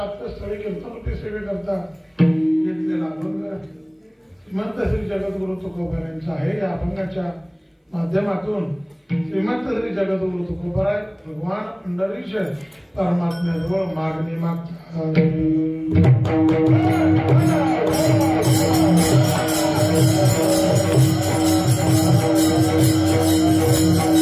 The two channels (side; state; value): both; identical; correlation 1.00